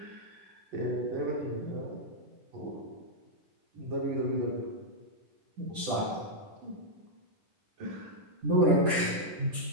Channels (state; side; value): late; left; 10 ms